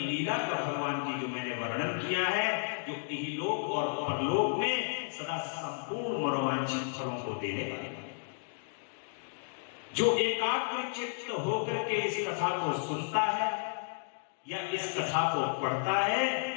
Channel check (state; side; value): silent; right; digital silence